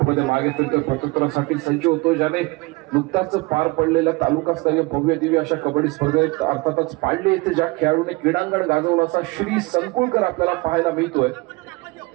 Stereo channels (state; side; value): quieter; left; 24.6 dB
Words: मागे फिरतोय. प्रत्युत्तरासाठी सज्ज होतो. ज्याने नुकताच पार पडलेल्या तालुकास्तरीय भव्य दिव्य अशा कबड्डी स्पर्धेत अर्थातच पाडले येथे ज्या खेळाडूने क्रीडांगण गाजवलं असा श्री संकुळकर आपल्याला पाहायला मिळतोय.